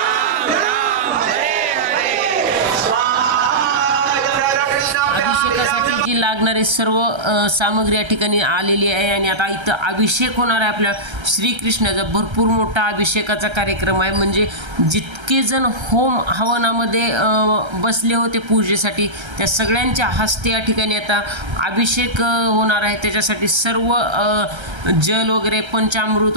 राम हरे हरे स्वाहा. इदं राधा कृष्णाभ्याम् अभिषेकासाठी जी लागणारी सर्व सामग्री या ठिकाणी आलेली आहे. आणि आता इथं अभिषेक होणार आहे आपल्या श्रीकृष्णाचा. भरपूर मोठा अभिषेकाचा कार्यक्रम आहे. म्हणजे जितके जण होम हवनामध्ये बसले होते पूजेसाठी, त्या सगळ्यांच्या हस्ते या ठिकाणी आता अभिषेक होणार आहे. त्याच्यासाठी सर्व जल वगैरे पंचामृत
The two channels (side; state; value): left; late; 1.3 ms